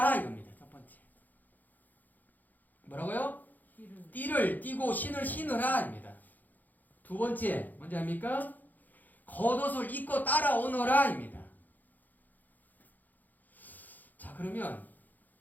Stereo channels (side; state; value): right; late; 0.084 ms